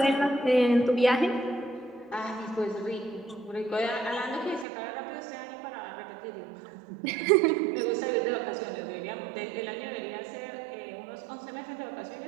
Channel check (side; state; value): left; drops out; at 4.7 s